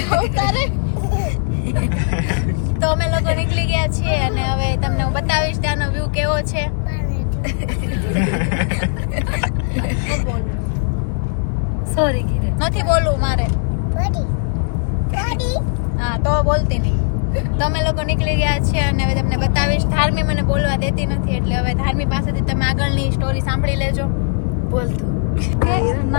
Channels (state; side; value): silent; right; 67 dB below the other